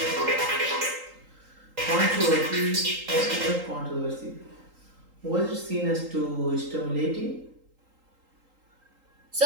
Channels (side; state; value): left; late; 3.8 ms